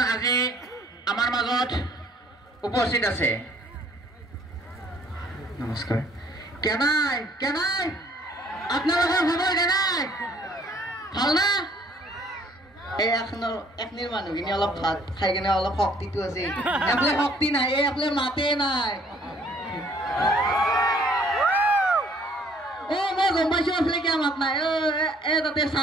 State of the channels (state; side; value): normal; both; correlation 0.60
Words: আজি আমাৰ মাজত উপস্থিত আছে। নমস্কাৰ। কেনাই কেনাই আপোনালোকৰ খবৰ কেনাই ভাল না? এই এখনিৰ মানুহখিনি অলপ ভাত খাই কেনে অলপ শক্তিটো আছে, এফালে শক্তি নাই, এফালে মাতে নাই। মই গম পাইছো এফালে কিয় মাত নাই। তাতে